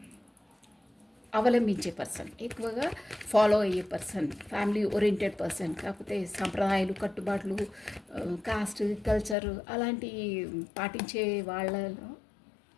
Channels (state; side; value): drops out; right; at 9.3 s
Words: అవలంబించే పర్సన్, ఎక్కువగా ఫాలో అయ్యే పర్సన్, ఫ్యామిలీ ఓరియంటెడ్ పర్సన్. కాకపోతే సంప్రదాయాలు, కట్టుబాట్లు, కాస్ట్, కల్చర్ అలాంటి పాటించే వాళ్ళలో